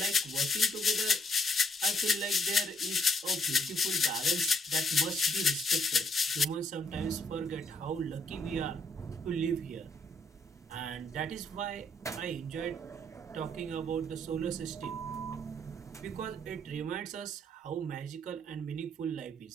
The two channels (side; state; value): both; normal; correlation 0.69